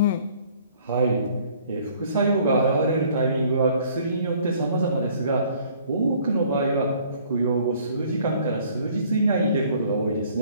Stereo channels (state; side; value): inverted; both; correlation -0.58